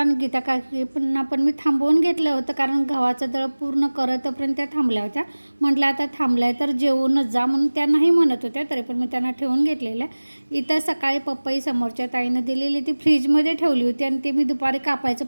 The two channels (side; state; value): both; inverted; correlation -1.00